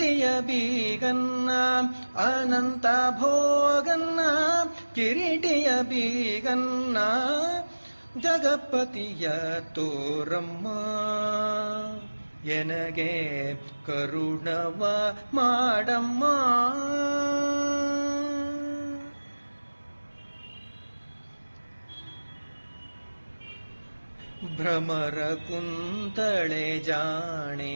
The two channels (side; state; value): both; inverted; correlation -1.00